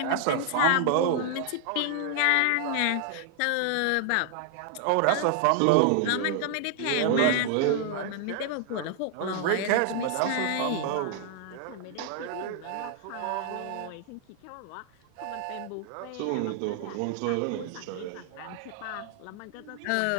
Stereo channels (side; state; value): both; different; correlation 0.00